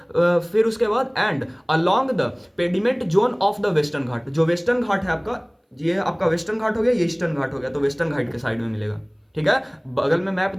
फिर उसके बाद and along the pediment zone of the Western Ghat, जो वेस्टर्न घाट है आपका, ये आपका वेस्टर्न घाट हो गया, ये ईस्टर्न घाट हो गया, तो वेस्टर्न घाट के साइड में मिलेगा। ठीक है, बगल में मैप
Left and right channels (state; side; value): identical; both; correlation 1.00